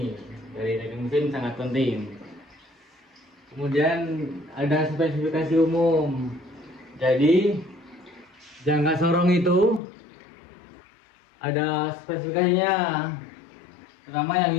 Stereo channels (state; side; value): drops out; right; at 9.8 s